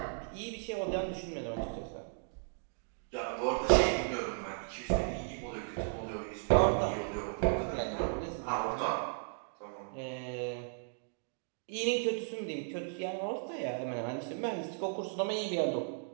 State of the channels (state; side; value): silent; left; digital silence